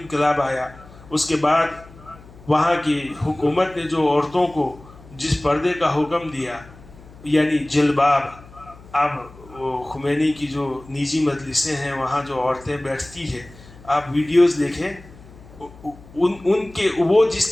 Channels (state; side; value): noise; left; hum, 21 dB below the sound